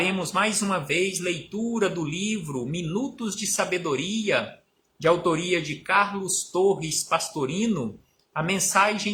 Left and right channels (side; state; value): both; identical; correlation 1.00